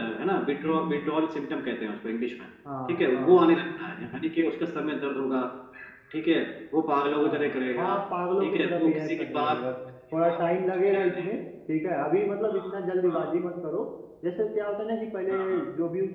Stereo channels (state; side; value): identical; both; correlation 1.00